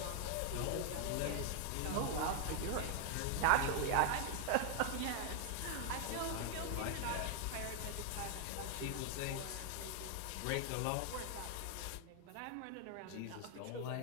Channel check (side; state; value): both; different; correlation 0.00